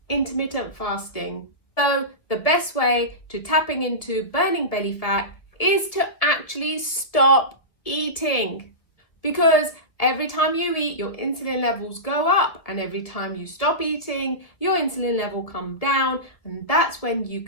intermittent fasting? So the best way to tapping into burning belly fat is to actually stop eating, because every time you eat, your insulin levels go up, and every time you stop eating, your insulin level come down, and that's when you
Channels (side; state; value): right; late; 1.7 ms